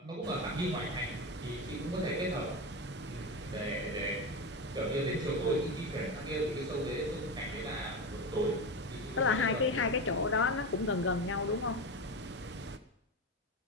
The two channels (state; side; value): normal; both; correlation 0.20